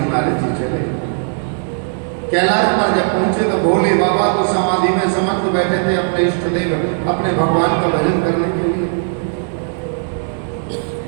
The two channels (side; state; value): left; silent; 67 dB below the other